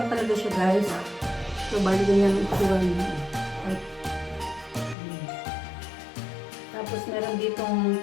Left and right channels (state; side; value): drops out; right; at 5.0 s